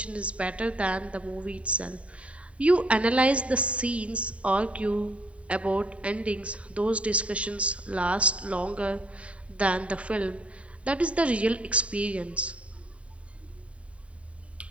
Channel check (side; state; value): left; late; 0.064 ms